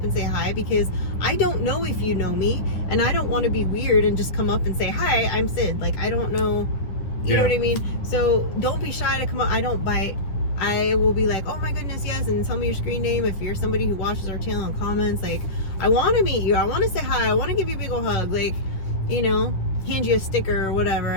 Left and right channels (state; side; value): late; right; 10 ms